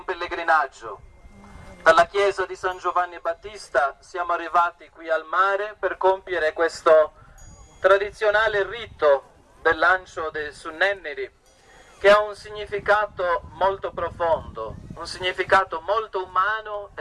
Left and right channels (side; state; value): both; identical; correlation 1.00